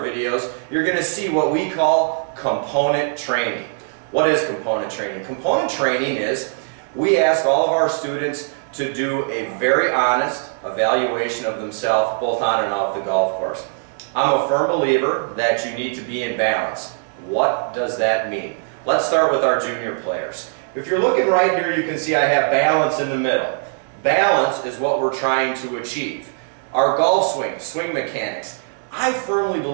you're going to see what we call component training. What is component training? Component training is we ask all of our students to do a very honest evaluation of themselves both on and off the golf course. I'm a firm believer that you need to be in balance. What does that mean? Let's start with our junior players. If you're looking right here, you can see I have balance in the middle. Balance is what we're trying to achieve. Our golf swing, swing mechanics, I firmly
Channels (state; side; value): silent; left; digital silence